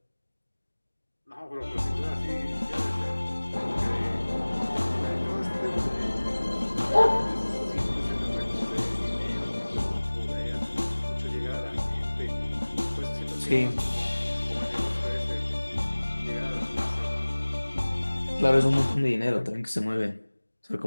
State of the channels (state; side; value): inverted; both; correlation -1.00